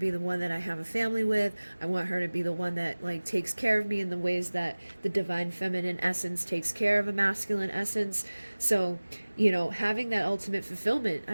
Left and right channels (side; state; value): both; inverted; correlation -1.00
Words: the one that I have a family with. I want her to be the one that like takes care of me in the ways that the divine feminine essence takes care of a masculine essence. So, you know, having that ultimate fulfillment,